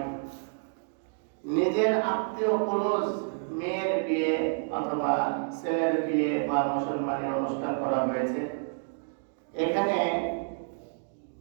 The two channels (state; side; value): silent; left; digital silence